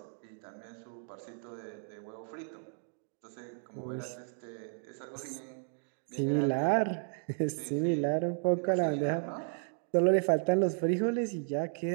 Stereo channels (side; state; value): left; silent; 55 dB below the other